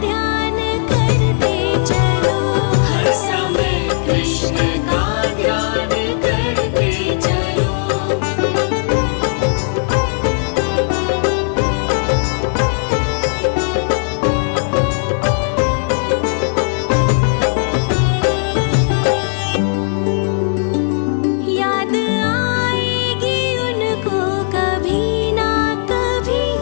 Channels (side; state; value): right; silent; digital silence